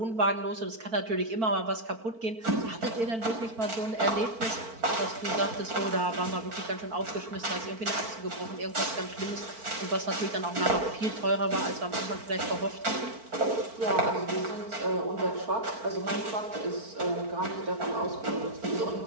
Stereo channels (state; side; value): late; left; 4.5 ms